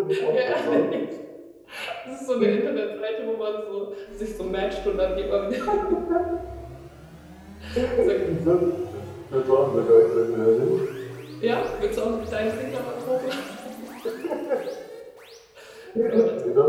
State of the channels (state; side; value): identical; both; correlation 1.00